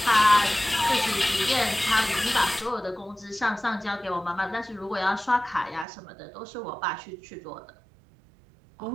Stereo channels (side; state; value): left; drops out; at 5.9 s